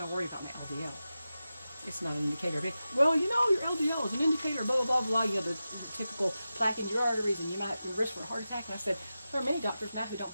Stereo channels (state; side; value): inverted; both; correlation -0.93